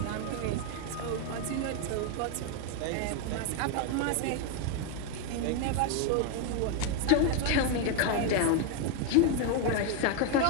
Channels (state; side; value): different; both; correlation 0.01